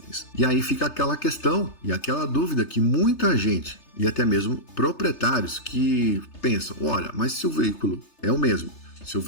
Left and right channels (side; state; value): right; late; 3.3 ms